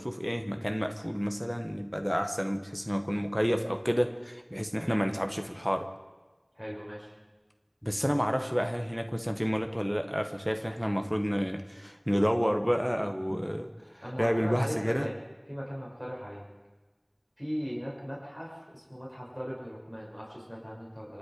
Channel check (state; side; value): identical; both; correlation 1.00